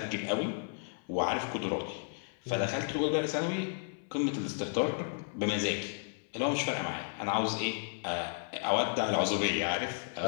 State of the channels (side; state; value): right; silent; 56 dB below the other